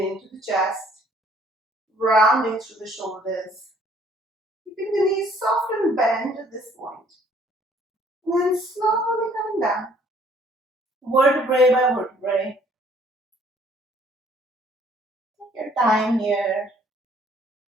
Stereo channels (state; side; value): normal; both; correlation 0.60